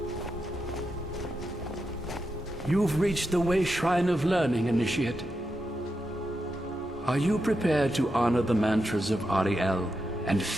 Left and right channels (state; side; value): normal; both; correlation 0.86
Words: You've reached the way shrine of learning, Initiate. Are you prepared to honor the mantras of Ariel and